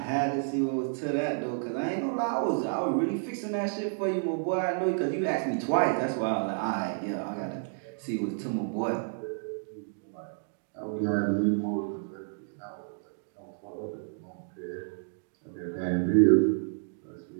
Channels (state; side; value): silent; left; digital silence